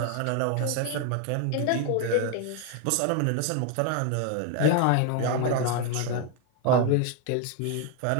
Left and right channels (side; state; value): both; different; correlation 0.01